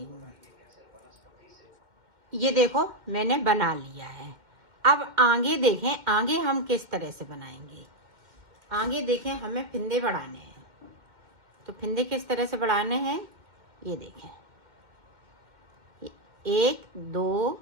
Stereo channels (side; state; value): left; late; 2.1 ms